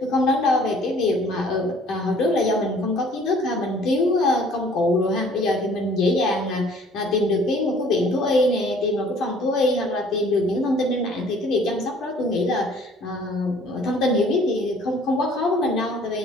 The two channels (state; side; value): normal; both; correlation 0.55